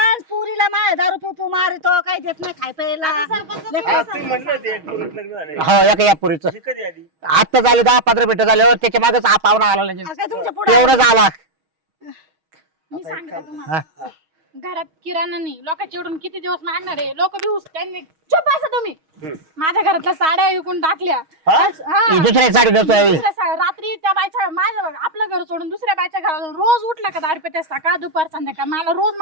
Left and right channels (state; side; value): late; left; 6.3 ms